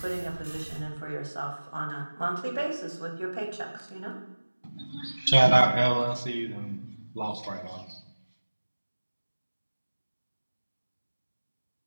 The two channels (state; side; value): inverted; both; correlation -1.00